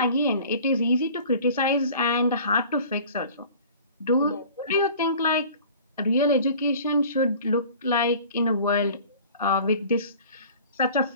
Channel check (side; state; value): both; inverted; correlation -0.45